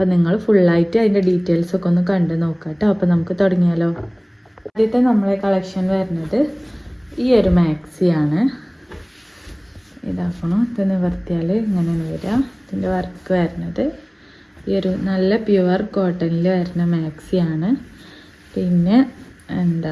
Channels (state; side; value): identical; both; correlation 1.00